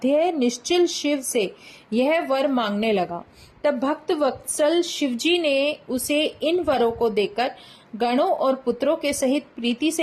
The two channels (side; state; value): both; identical; correlation 1.00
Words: निश्चल शिव से यह वर मांगने लगा। तब भक्त वत्सल शिवजी ने उसे इन वरों को देकर गणों और पुत्रों के सहित प्रीति